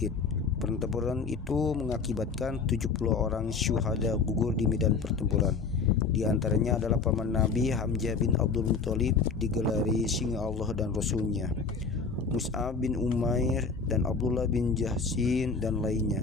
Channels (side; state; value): right; quieter; 4.9 dB